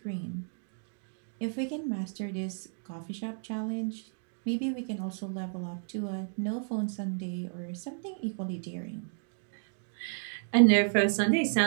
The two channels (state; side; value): silent; left; 56 dB below the other